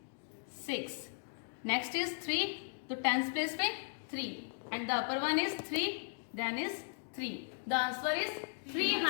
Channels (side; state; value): right; silent; digital silence